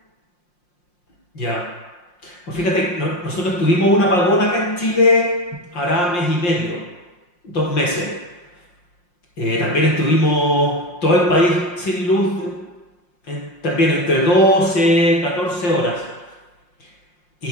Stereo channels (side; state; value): right; late; 5.6 ms